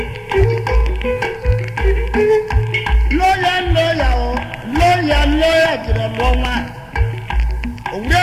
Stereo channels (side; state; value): both; identical; correlation 1.00